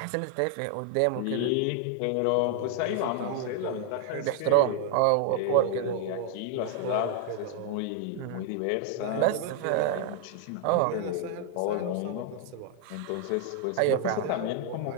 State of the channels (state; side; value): different; both; correlation 0.00